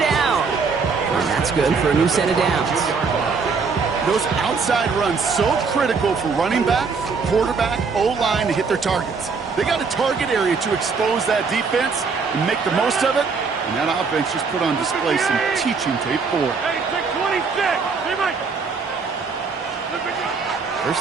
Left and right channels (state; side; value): quieter; left; 5.0 dB